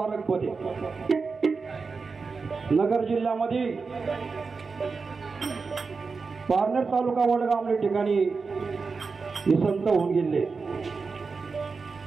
आहे। नगर जिल्ह्यामध्ये पारनेर तालुका वडगाव या ठिकाणी हे संत होऊन गेले।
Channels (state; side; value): quieter; left; 4.7 dB